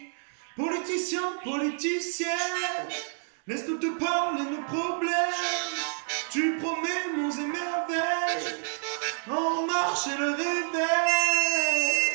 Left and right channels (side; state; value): left; silent; 58 dB below the other